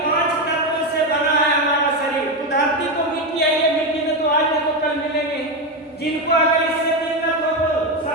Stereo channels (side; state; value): both; normal; correlation 0.11